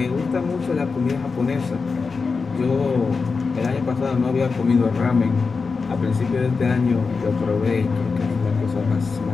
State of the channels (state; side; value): quieter; right; 4.7 dB